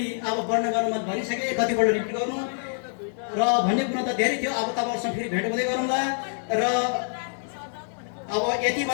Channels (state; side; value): silent; right; 61 dB below the other